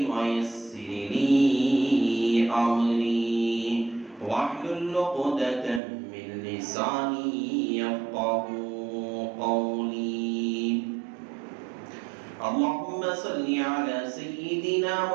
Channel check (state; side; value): drops out; left; at 5.8 s